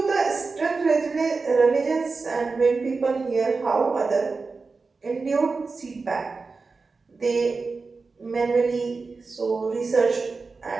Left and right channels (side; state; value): left; quieter; 4.2 dB